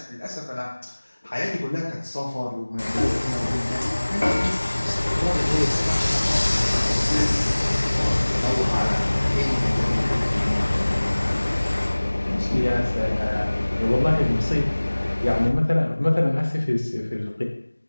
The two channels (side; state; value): both; inverted; correlation -1.00